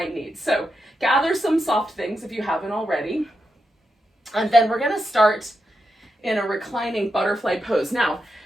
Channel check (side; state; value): both; normal; correlation 0.86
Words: need. So gather some soft things if you haven't already. And then we're going to start in a reclining butterfly pose. Now,